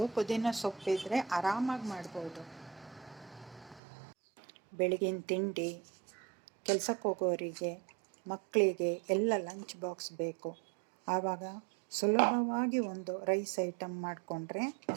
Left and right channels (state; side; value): drops out; left; at 3.8 s